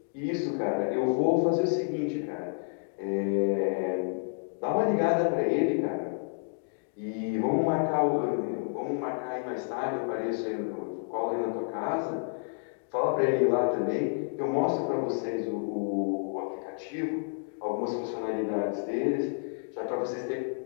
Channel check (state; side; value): silent; right; digital silence